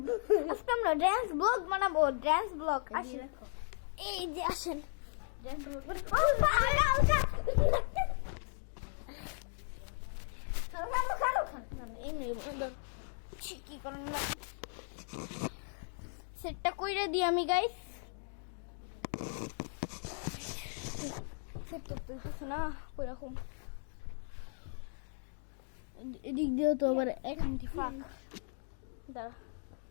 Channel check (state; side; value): silent; right; 53 dB below the other